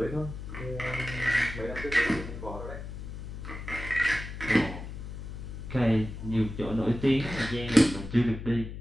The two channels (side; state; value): left; noise; hum, 9 dB below the sound